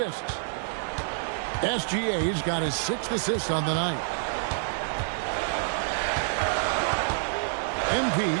SGA's got his 6th assist on the night. MP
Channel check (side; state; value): left; silent; 60 dB below the other